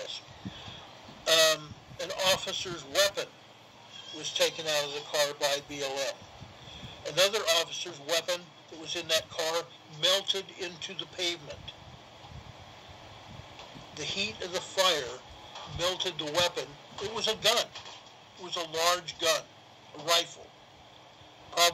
An officer's weapon was taken out of the car by BLM. Another officer's weapon that was in that car melted into the pavement. The heat of the fire melted the weapon. It was a gun. It was a large gun, a rifle,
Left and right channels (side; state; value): both; identical; correlation 1.00